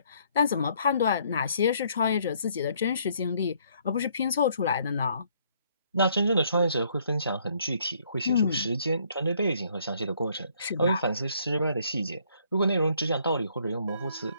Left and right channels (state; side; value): inverted; both; correlation -0.66